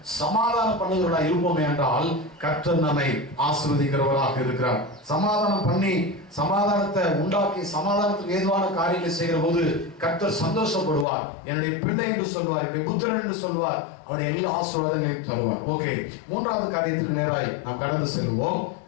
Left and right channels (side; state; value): right; drops out; at 11.1 s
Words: சமாதானம் பண்ணுகிறவர்களாக இருப்போமே என்றால் கர்த்தர் நம்மை ஆசீர்வதிக்கிறவராக இருக்கிறார். சமாதானம் பண்ணி சமாதானத்தை உண்டாக்கி சமாதானத்துக்கு ஏதுவான காரியங்களை செய்கிற போது கர்த்தர் சந்தோஷப்படுவார். என்னுடைய பிள்ளை என்று சொல்வார், என்னுடைய புத்திரன் என்று சொல்வார், அவருடைய எல்லா ஆசீர்வாதங்களையும் தருவார். ஓகே, மூன்றாவது காரியத்துக்கு நேராய் நாம் கடந்து செல்வோம்.